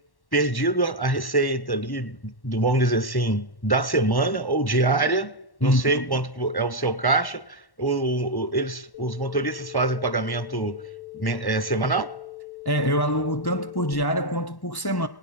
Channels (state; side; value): late; right; 1.1 ms